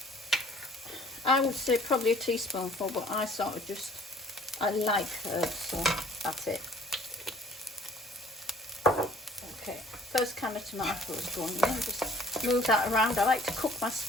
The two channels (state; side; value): normal; both; correlation 0.54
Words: I would say probably a teaspoonful, but I sort of just, I like herbs, so that's it. Okay, first can of tomatoes going in, just move that around. I like to cook my